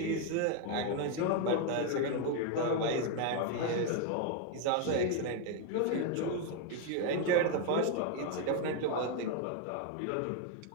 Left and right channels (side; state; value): both; different; correlation 0.01